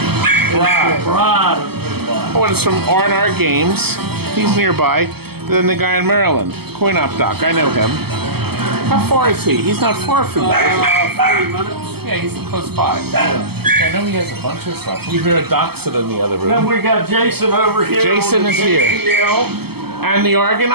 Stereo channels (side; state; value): left; late; 0.96 ms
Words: Bride. Oh, and it's from R&R Games. He's nearby. Then the guy in Maryland, Coin Op Doc, I know him. How far is he? He's not far from that. 30 minutes. Yeah, he's close by. Yeah. I know he has a bunch of stuff. We hear a Dachshund in the other room. Then we got Jason over here. Jason is here. And the